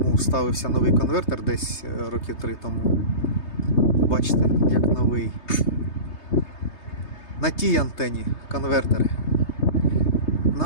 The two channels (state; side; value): late; right; 3.3 ms